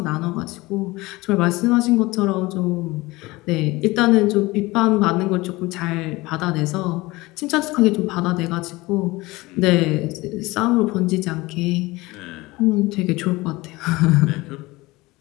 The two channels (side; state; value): right; quieter; 21.1 dB